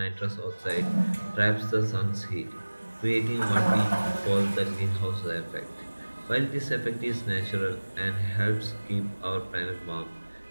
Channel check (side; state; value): both; inverted; correlation -1.00